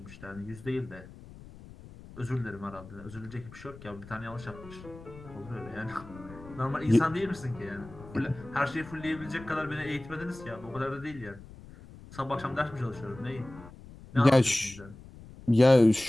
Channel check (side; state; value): left; noise; rumble, 18 dB below the sound